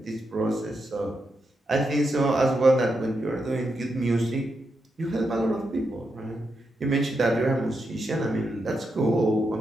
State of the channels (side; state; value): both; normal; correlation 0.84